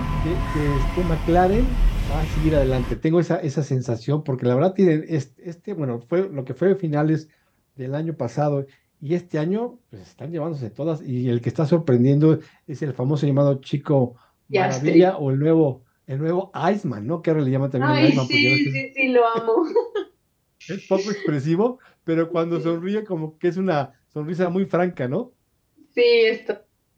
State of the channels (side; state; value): both; identical; correlation 1.00